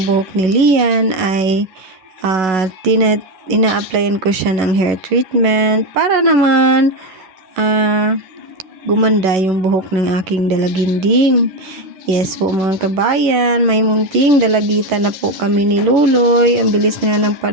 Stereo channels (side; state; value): left; late; 11 ms